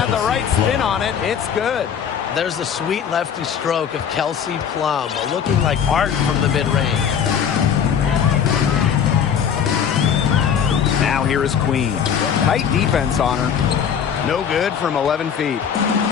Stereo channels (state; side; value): quieter; right; 7.8 dB